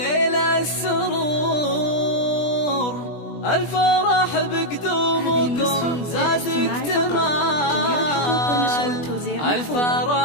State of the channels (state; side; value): late; right; 20 ms